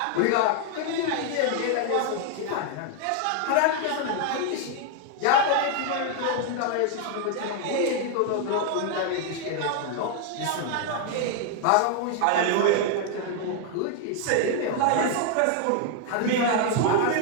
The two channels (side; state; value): both; different; correlation 0.00